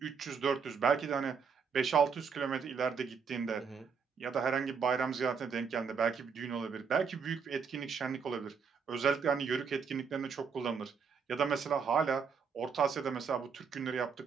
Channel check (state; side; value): quieter; left; 6.0 dB